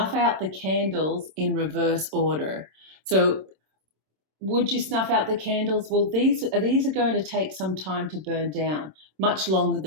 out the candles in reverse order. So would you snuff out the candles? Well, these are going to take some time to burn down, much longer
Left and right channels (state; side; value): late; left; 26 ms